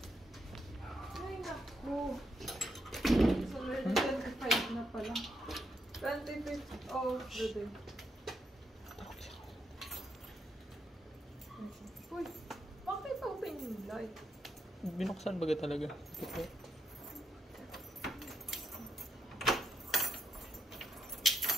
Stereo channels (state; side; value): normal; both; correlation 0.80